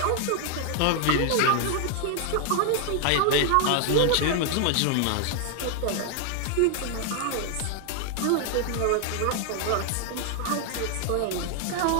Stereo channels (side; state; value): both; different; correlation 0.00